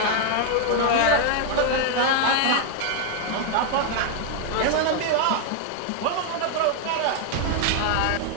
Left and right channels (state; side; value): different; both; correlation 0.00